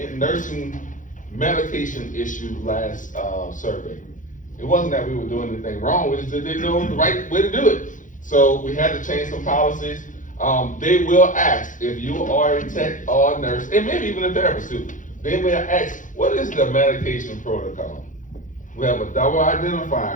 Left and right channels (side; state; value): right; late; 0.37 ms